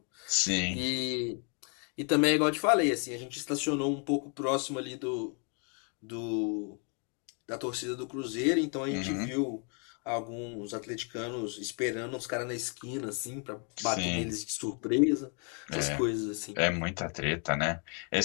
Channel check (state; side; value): quieter; right; 38.7 dB